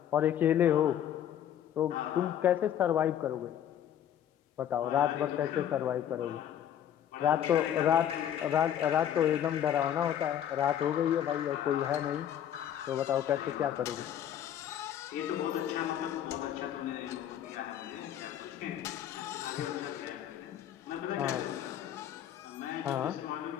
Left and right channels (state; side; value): quieter; right; 10.3 dB